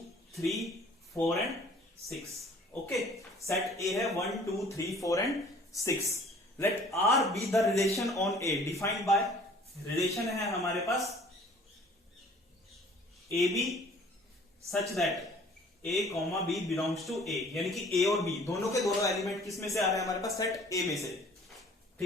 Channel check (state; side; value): normal; both; correlation 0.52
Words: 3 4 एंड 6। ओके, सेट ए है 1 2 3 4 and 6। Let R be the relation on A defined by, relation है हमारे पास A B such that A comma B belongs to A, यानी कि ए और बी दोनों के दोनों एलिमेंट किस में से आ रहे हैं हमारे पास, सेट ए में से,